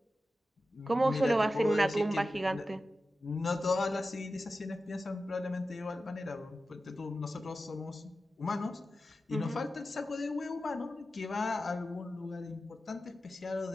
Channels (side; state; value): both; normal; correlation 0.93